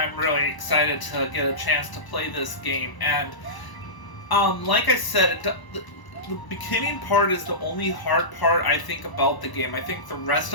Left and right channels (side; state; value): right; late; 1.0 ms